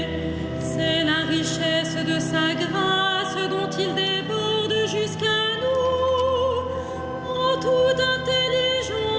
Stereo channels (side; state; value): both; identical; correlation 1.00